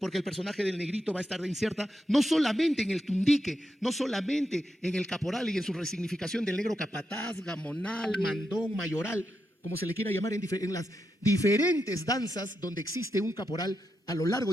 el personaje del negrito va a estar incierta no solamente en el tundique, no solamente en el caporal y en su resignificación del negro capataz, gamonal, mandón, mayoral, como se le quiera llamar en las diferentes danzas donde existe un caporal a lo largo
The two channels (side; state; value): both; normal; correlation 0.85